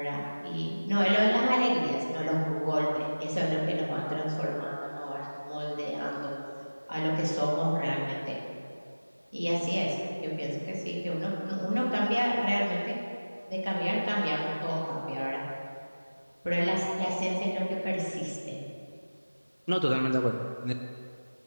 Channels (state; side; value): inverted; both; correlation -1.00